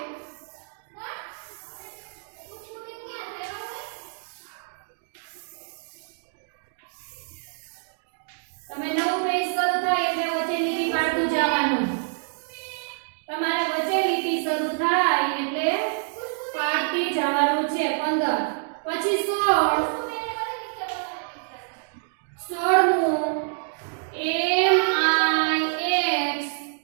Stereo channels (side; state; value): left; silent; digital silence